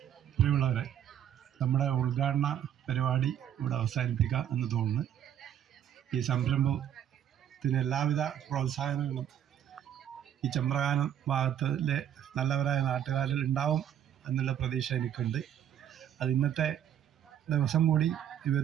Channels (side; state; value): left; quieter; 10.0 dB